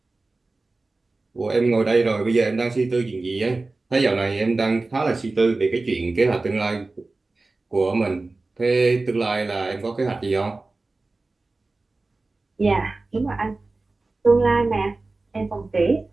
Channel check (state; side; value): quieter; left; 3.4 dB